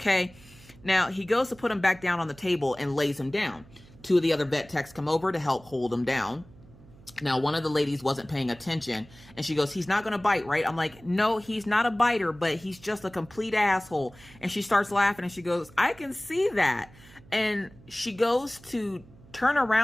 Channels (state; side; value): noise; right; hum, 23 dB below the sound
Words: Now, he goes to put him back down on the table and lays him down. Two of the other vet techs come over to help hold him down. Now, one of the ladies wasn't paying attention, and she goes, he's not going to bite, right? I'm like, no, he's not a biter, but he's just a complete asshole. And she starts laughing, and she goes, I can see that. And she goes to turn